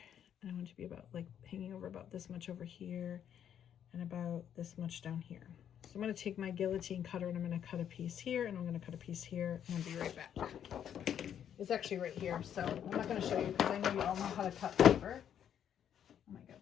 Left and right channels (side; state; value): right; quieter; 9.4 dB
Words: and I want it to be about like hanging over about this much over here, and about this much down here. So I'm going to take my guillotine cutter and I'm going to cut a piece here, and I'm going to cut a piece here, and I'll be right back. It's actually right here, so I'm not going to show you because I know you all know how to cut paper. Oh my